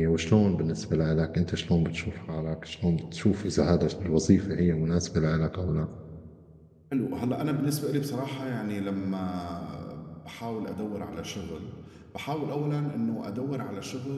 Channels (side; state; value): both; identical; correlation 1.00